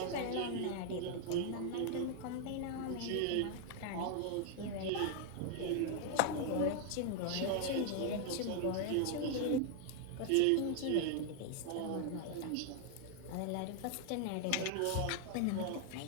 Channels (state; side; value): different; both; correlation 0.00